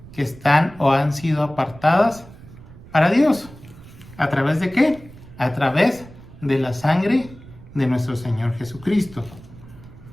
que están o han sido apartadas para Dios. ¿A través de qué? A través de la sangre de nuestro Señor Jesucristo.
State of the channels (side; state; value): right; noise; rumble, 19 dB below the sound